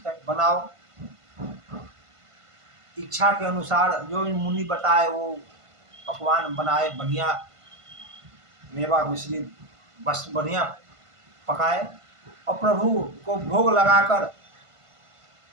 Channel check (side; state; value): left; late; 1.5 ms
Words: है बनाओ। इच्छा के अनुसार जो मुनि बताए वो पकवान बनाए, बढ़िया मेवा मिश्री बस बढ़िया पकाए और प्रभु को भोग लगाकर